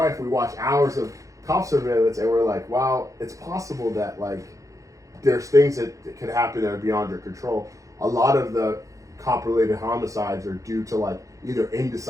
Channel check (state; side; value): late; left; 0.16 ms